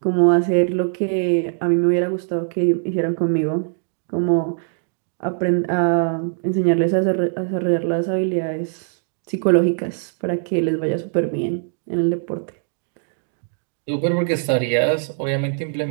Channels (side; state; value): left; silent; digital silence